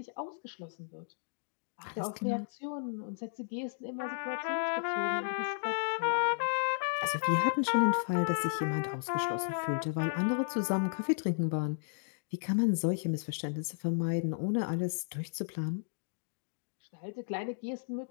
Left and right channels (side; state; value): right; silent; digital silence